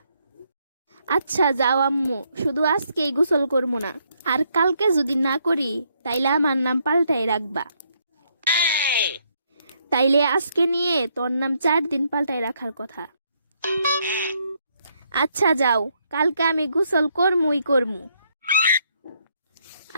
আচ্ছা যাও আম্মু, শুধু আজকেই গোসল করবো না, আর কালকে যদি না করি তাইলে আমার নাম পাল্টাই রাখবা। তাইলে আজকে নিয়ে তোর নাম 4 দিন পাল্টাই রাখার কথা। আচ্ছা যাও, কালকে আমি গোসল করমুই করমু।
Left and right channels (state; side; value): inverted; both; correlation -0.73